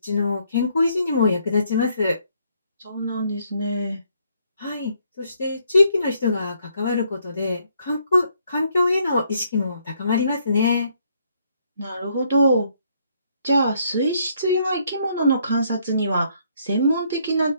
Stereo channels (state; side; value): inverted; both; correlation -0.70